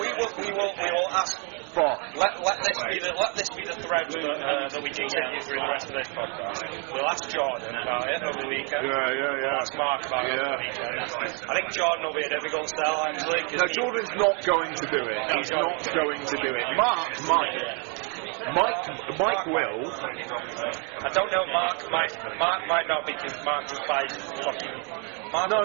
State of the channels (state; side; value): quieter; left; 36.4 dB